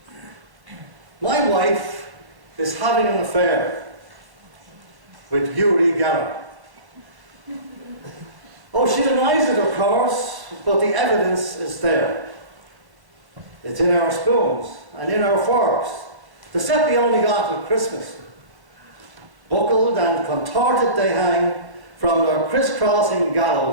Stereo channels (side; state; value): left; late; 1.0 ms